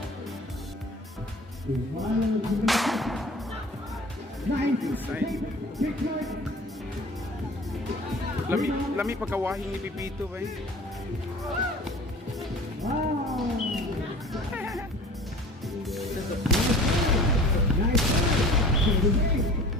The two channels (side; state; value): both; normal; correlation 0.43